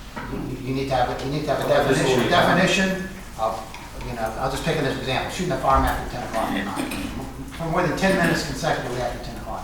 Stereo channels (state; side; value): identical; both; correlation 1.00